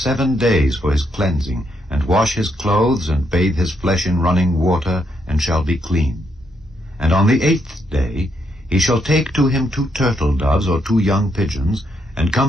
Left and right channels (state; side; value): normal; both; correlation 0.77